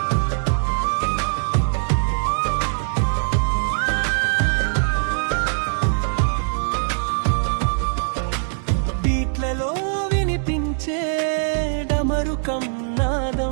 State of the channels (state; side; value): silent; left; digital silence